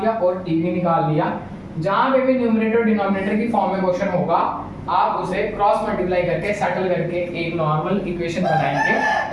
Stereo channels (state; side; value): identical; both; correlation 1.00